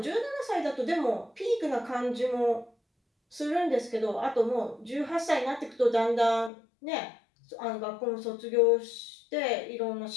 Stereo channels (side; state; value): right; drops out; at 6.5 s